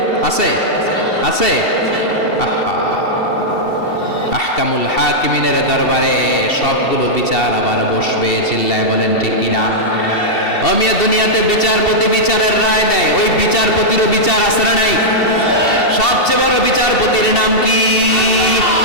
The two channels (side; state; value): right; late; 2.7 ms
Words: আছে, আছে। আহকামুল হাকিমিনের দরবারে সবগুলো বিচার আবার বসবে। চিল্লায় বলেন ঠিক কিনা? অমিয়া দুনিয়াতে বিচারপতি বিচারের রায় দেয়, ওই বিচারপতিরও বিচার আছে না নাই? সবচেয়ে বড় বিচারপতির নাম কি?